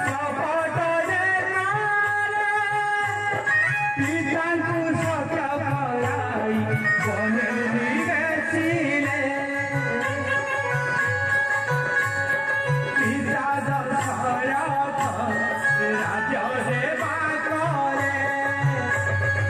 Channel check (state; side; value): noise; right; rumble, 29 dB below the sound